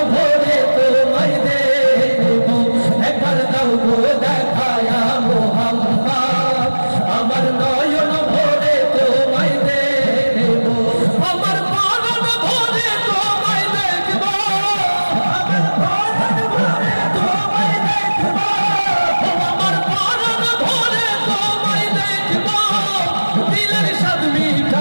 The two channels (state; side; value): inverted; both; correlation -1.00